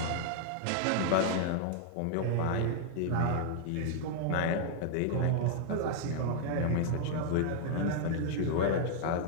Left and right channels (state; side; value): different; both; correlation 0.00